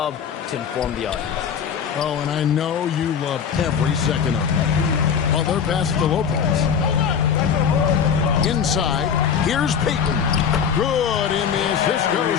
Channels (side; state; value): right; quieter; 7.3 dB